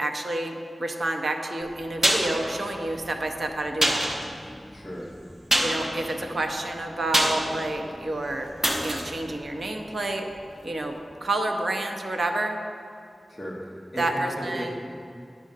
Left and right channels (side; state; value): both; normal; correlation 0.91